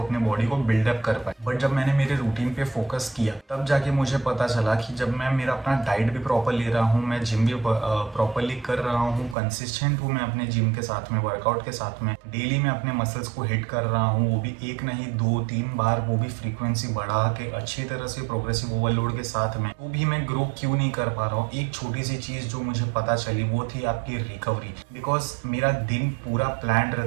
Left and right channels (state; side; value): drops out; left; at 9.3 s